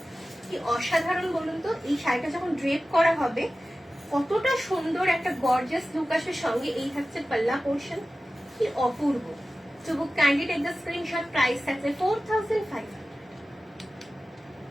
কি অসাধারণ বলুন তো। এই শাড়িটা যখন ড্রেপ করা হবে কতটা সুন্দর একটা গর্জিয়াস লুক আসবে। সঙ্গে এই থাকছে পাল্লা পোর্শন, কি অপূর্ব। To book kindly take the screenshot. Price থাকছে 4500।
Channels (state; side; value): normal; both; correlation 0.95